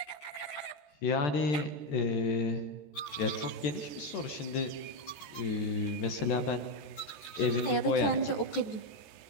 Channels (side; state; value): right; late; 14 ms